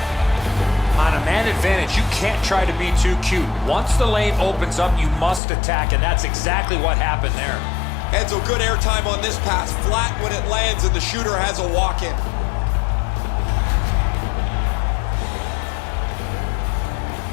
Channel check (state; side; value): drops out; right; at 5.4 s